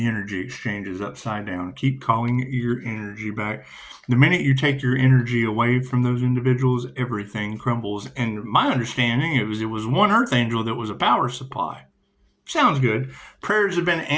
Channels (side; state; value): both; identical; correlation 1.00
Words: energy exchange is upside down. Keep calling your energy back. The minute you take your energy away from those individuals, everything crumbles. And my understanding, it was one earth angel that was a power supply. Sounds good. Prayers have been